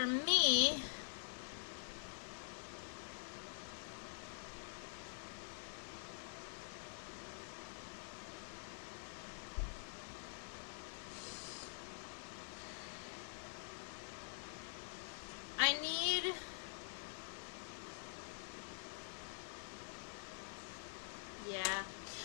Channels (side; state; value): right; silent; digital silence